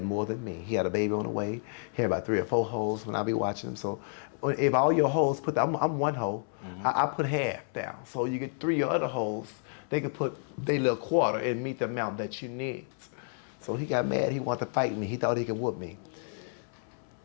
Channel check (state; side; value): silent; right; 58 dB below the other